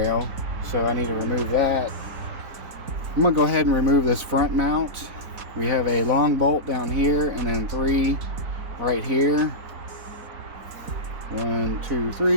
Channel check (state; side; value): late; left; 4.1 ms